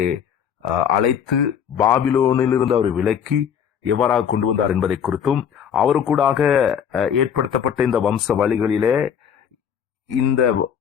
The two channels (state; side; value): quieter; right; 8.2 dB